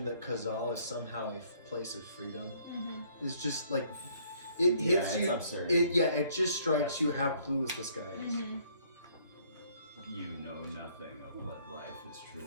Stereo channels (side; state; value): both; inverted; correlation -0.63